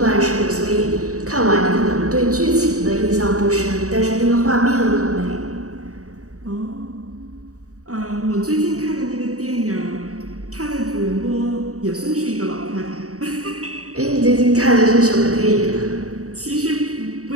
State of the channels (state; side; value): late; left; 0.66 ms